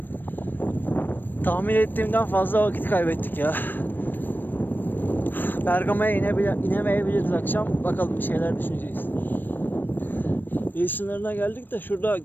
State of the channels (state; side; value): late; right; 0.093 ms